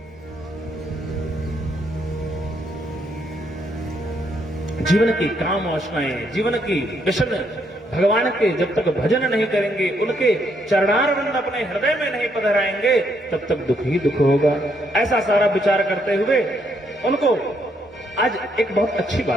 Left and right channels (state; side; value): normal; both; correlation 0.74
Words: जीवन की काम वासनाएं, जीवन की व्यसन भगवान के जब तक भजन नहीं करेंगे, उनके चरणारविंद अपने हृदय में नहीं पधराएंगे, तब तक दुख ही दुख होगा। ऐसा सारा विचार करते हुए उनको आज एक बहुत अच्छी